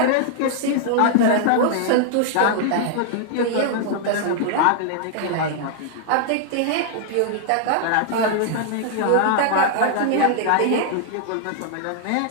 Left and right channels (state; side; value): different; both; correlation -0.01